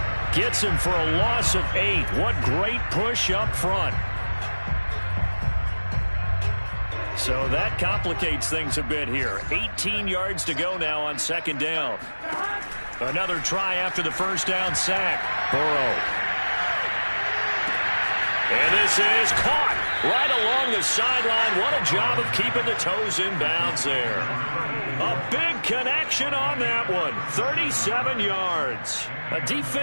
gets him for a loss of 8. What great push up front. So that complicates things a bit here. 18 yards to go now on 2nd down. Another try after the 1st down sack. Burrow. And this is caught. Right along the sideline. What a job of keeping the toes in bounds there. A big connection on that one. 37 yards.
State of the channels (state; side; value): inverted; both; correlation -1.00